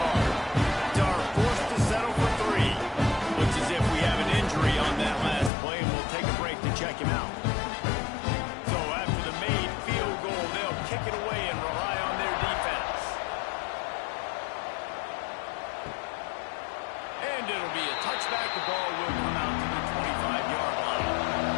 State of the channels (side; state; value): right; drops out; at 5.5 s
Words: Dar forced to settle for 3. Looks as if we have an injury on that last play, and we'll take a break to check him out. So after the made field goal, they'll kick it away and rely on their defense. And it'll be a touchback. The ball will come out to the 25-yard line.